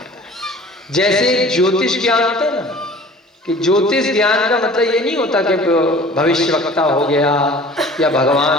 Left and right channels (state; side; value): normal; both; correlation 0.46